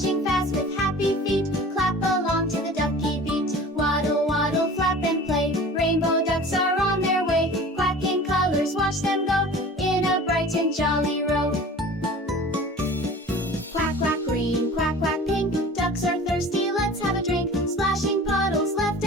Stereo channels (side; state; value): both; normal; correlation 0.41